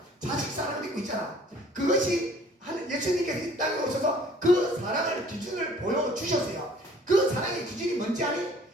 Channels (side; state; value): both; normal; correlation 0.54